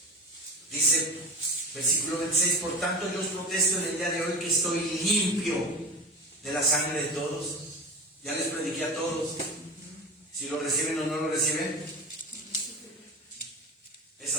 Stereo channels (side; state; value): both; normal; correlation 0.30